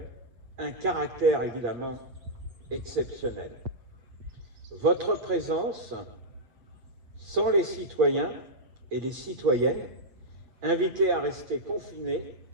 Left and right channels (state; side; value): late; left; 8.3 ms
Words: un caractère évidemment exceptionnel. Votre présence, sans les citoyens et les citoyennes, invités à rester confinés,